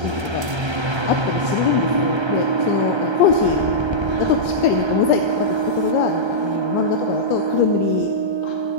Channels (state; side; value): late; left; 1.3 ms